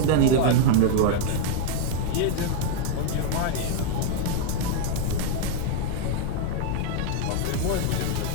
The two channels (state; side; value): different; both; correlation 0.01